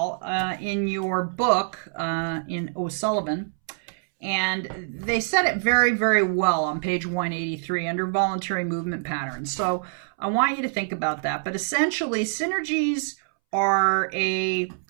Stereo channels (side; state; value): left; silent; 62 dB below the other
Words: in your book in O'Sullivan. And they said it very, very well on page 183 under voluntary movement patterns. So I want you to think about that. But essentially, synergies are a